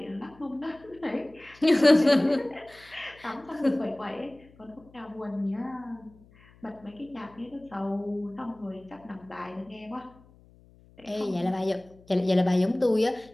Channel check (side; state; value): left; noise; hum, 26 dB below the sound